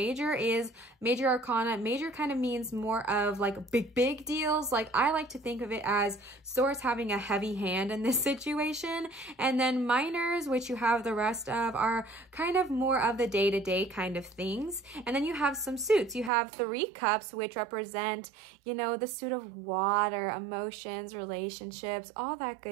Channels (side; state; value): left; drops out; at 16.3 s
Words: is major arcana. Major kind of means more of like big deals. Like I like to think of it as Source having a heavy hand in this situation. And then minors, which you have the rest of, are kind of more of the day-to-day kind of things. And then you have some suits. You have Three Cups, which represent, you know, the suit of water, emotions, relationships, all that